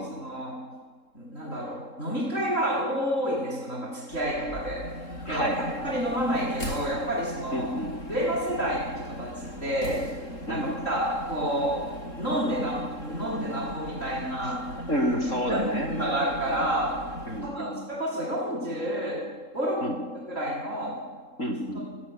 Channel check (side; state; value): right; late; 3.7 ms